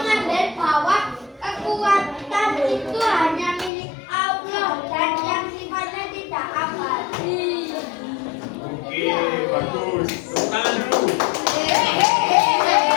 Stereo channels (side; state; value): right; drops out; at 3.7 s